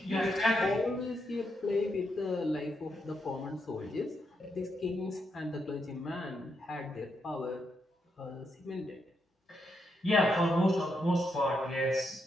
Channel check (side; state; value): both; normal; correlation 0.81